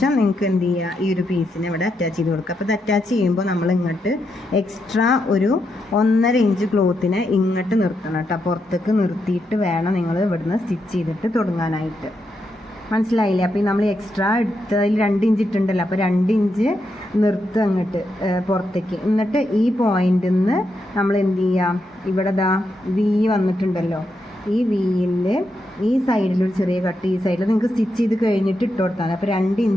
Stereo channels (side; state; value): both; normal; correlation 0.83